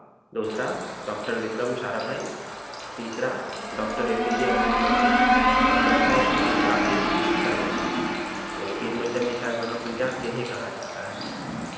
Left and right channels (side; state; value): both; identical; correlation 1.00